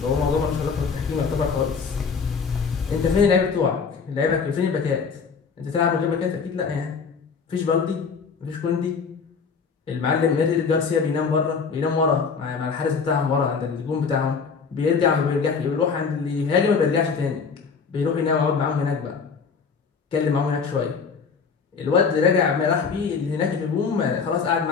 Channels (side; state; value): right; quieter; 5.5 dB